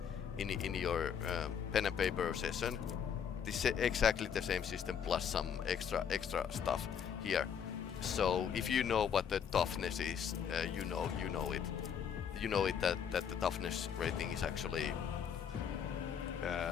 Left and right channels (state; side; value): quieter; right; 7.7 dB